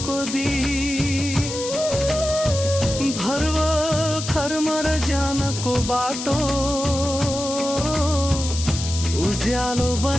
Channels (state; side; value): noise; left; hiss, 7 dB below the sound